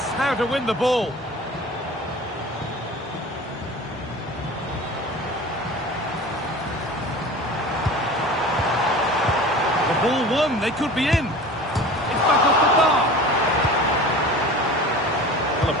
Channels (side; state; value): both; normal; correlation 0.38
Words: how to win the ball. The ball won, they could be in. It's back off the bar. Well, Well,